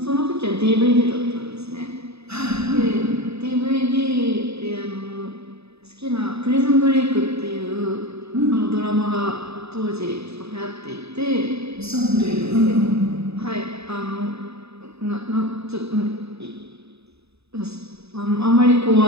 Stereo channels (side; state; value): left; late; 0.79 ms